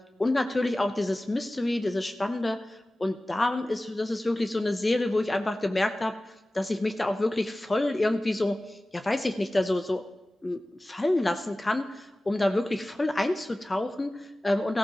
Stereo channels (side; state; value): both; normal; correlation 0.97